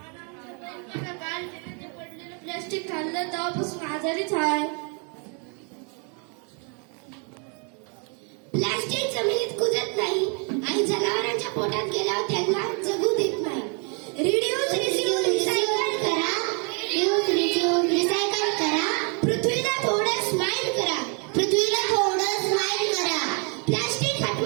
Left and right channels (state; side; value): quieter; left; 36.6 dB